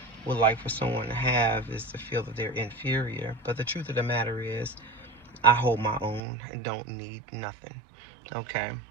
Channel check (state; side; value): drops out; left; at 6.2 s